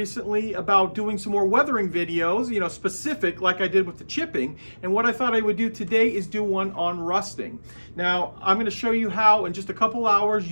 about doing some more weathering videos, specific like I did with the chipping. And what I thought I would do today is do one on rusting. Now, I'm going to show you how in just a couple hours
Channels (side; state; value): both; inverted; correlation -1.00